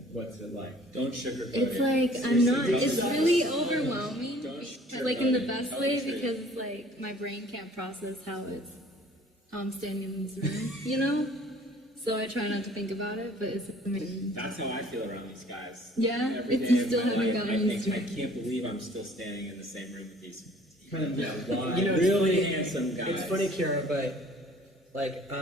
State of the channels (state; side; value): normal; both; correlation 0.53